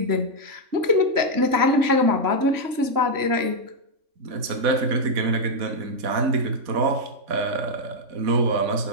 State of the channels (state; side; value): late; left; 3.6 ms